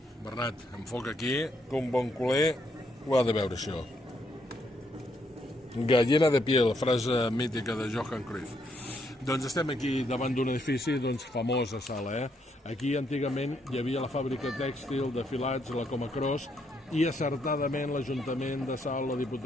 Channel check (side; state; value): both; normal; correlation 0.75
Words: Bernat, enfoca aquí, que un bon culer ho ha de veure, això. Gallina de piel, frase mítica de Johan Cruyff. Doncs estem aquí davant d'un edifici famós a Sala. Aquí antigament hi havia la fàbrica tèxtil de filats, la Comacros, i acertadament l'Ajuntament de Salt, la